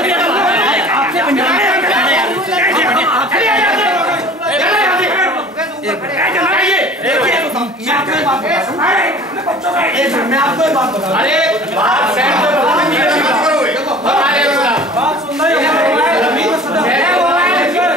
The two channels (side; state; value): both; normal; correlation 0.45